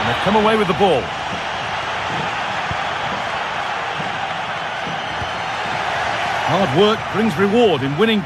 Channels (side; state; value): both; identical; correlation 1.00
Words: they've come away with the ball. Hard work brings reward in winning